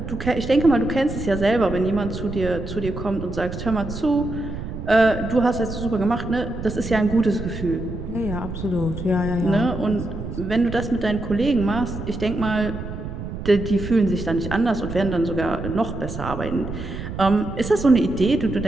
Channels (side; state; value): right; noise; rumble, 8 dB below the sound